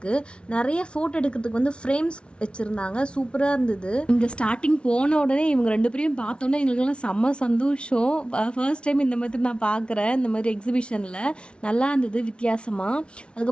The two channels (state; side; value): late; right; 0.058 ms